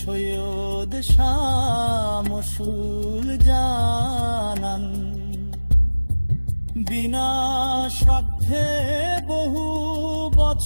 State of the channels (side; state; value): both; inverted; correlation -1.00